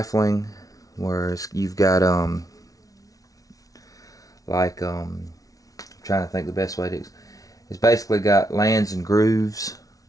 whereas you've got I'm trying to think the best way to. It's basically got lands and grooves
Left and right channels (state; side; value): late; right; 0.18 ms